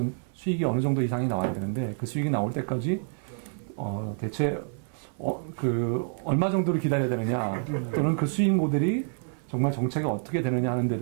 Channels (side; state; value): left; silent; 60 dB below the other